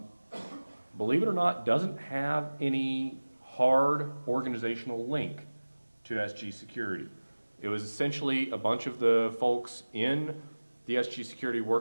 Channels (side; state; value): both; inverted; correlation -1.00